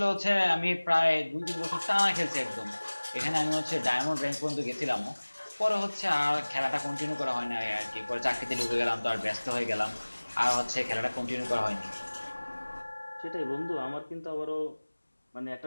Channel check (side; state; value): both; inverted; correlation -1.00